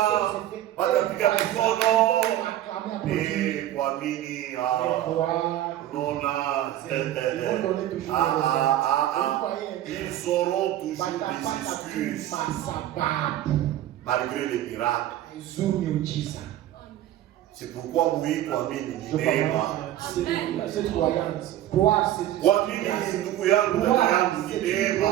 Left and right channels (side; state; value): left; quieter; 12.9 dB